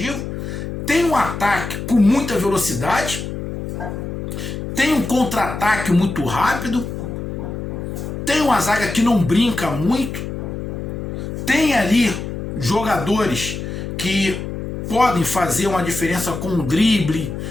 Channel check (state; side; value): noise; left; hum, 6 dB below the sound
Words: tem um ataque com muita velocidade, tem um contra-ataque muito rápido, tem uma zaga que não brinca muito, tem ali jogadores que podem fazer uma diferença com um drible,